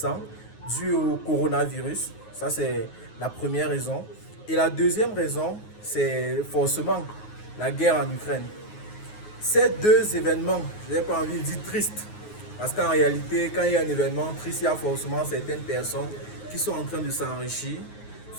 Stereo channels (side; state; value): right; late; 9.5 ms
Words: dû au coronavirus. Ça, c'est la première raison. Et la deuxième raison, c'est forcément la guerre en Ukraine. Ces deux événements, je n'ai pas envie de dire tristes, parce qu'en réalité, quand il y a un événement triste, il y a forcément certaines personnes qui sont en train de s'enrichir,